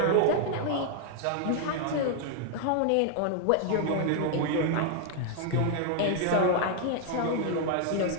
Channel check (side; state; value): both; different; correlation 0.00